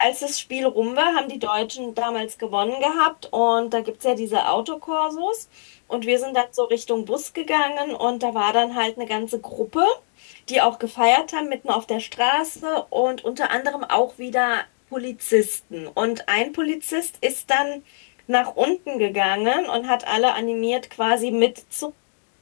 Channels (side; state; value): right; silent; digital silence